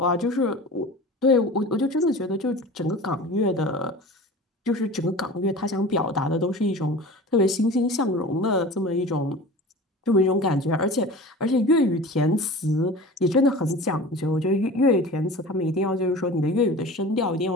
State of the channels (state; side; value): normal; both; correlation 0.37